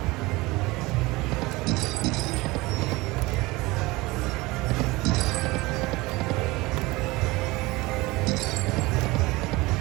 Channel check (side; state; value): left; quieter; 21.7 dB